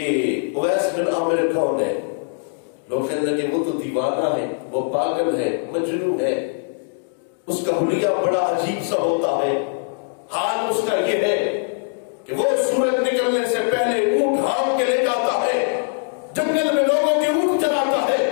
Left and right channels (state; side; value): silent; right; digital silence